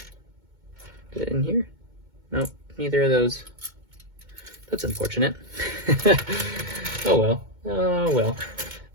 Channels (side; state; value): left; late; 2.2 ms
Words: Is it in here? Nope, neither of those. That's unfortunate. Oh well. Oh well.